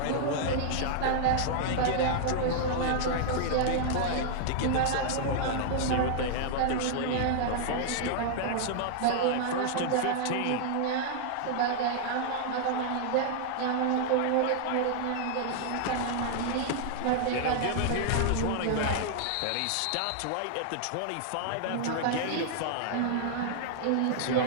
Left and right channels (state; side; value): different; both; correlation -0.01